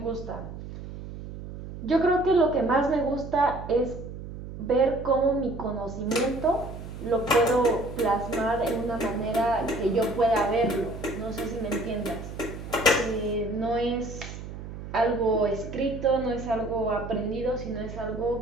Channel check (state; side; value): noise; right; hum, 10 dB below the sound